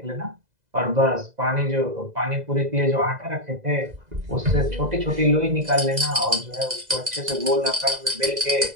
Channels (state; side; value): late; left; 2.0 ms